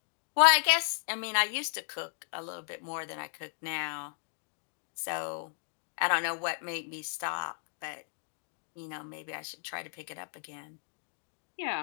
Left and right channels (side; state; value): right; silent; digital silence